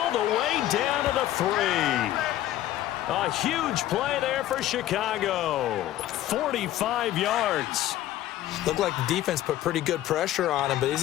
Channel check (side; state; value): right; quieter; 13.7 dB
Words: the way down to the 3. A huge play there for Chicago. 45 yards. Looked like the defense put pretty good pressure on him, but